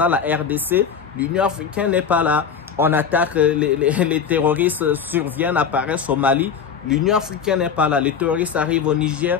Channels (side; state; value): right; quieter; 6.9 dB